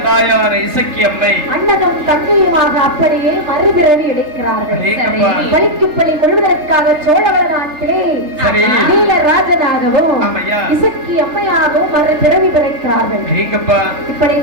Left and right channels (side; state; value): left; late; 3.3 ms